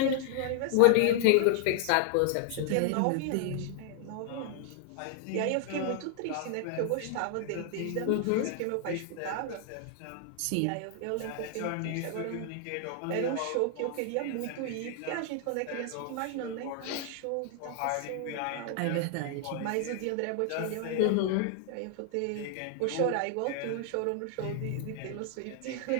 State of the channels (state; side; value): different; both; correlation 0.00